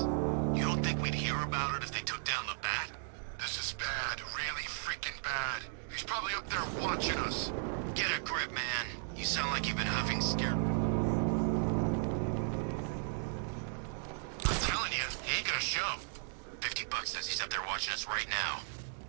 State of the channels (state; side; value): silent; left; 54 dB below the other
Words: You don't think we'd hear about it if they took down the Bat? This is bad. Really freaking bad. He's probably up there watching us. Get a grip, man. You sound like you've been huffing Scarecrow's fear toxin. I'm telling you, he ain't gonna show. $50 says he's up there watching us right now.